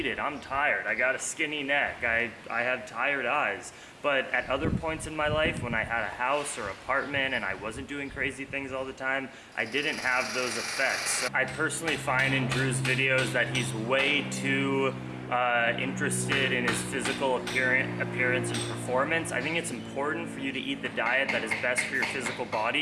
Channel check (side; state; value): both; identical; correlation 1.00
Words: I'm tired, I got a skinny neck, I have tired eyes. But at other points in my life, when I had a house or apartment and I wasn't doing crazy things all the time, I didn't have those effects. So I personally find in Drew's videos that he's way too interested in his physical appearance and performance. I think it's important for you to eat the diet that is best for your physical